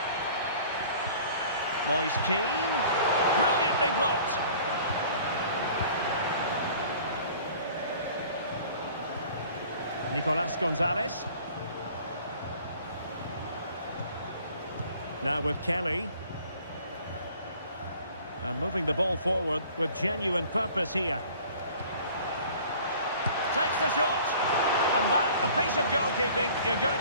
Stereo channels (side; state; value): both; inverted; correlation -0.49